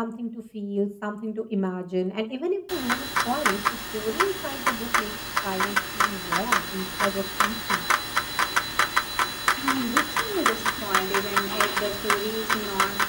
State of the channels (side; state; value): both; identical; correlation 1.00